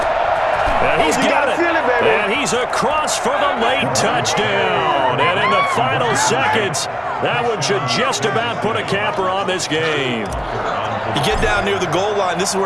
And he's got it. And he's across for the late touchdown. And in the final seconds, that one should just about put a capper on this game. You get down near the goal line, this is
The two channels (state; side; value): identical; both; correlation 1.00